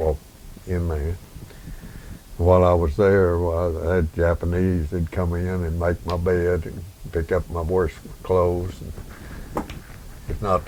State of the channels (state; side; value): identical; both; correlation 1.00